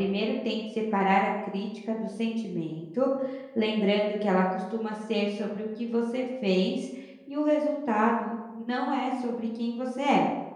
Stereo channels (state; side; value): identical; both; correlation 1.00